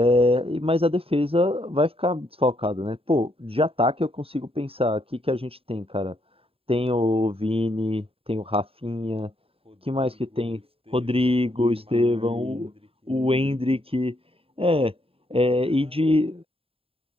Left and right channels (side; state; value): left; late; 0.27 ms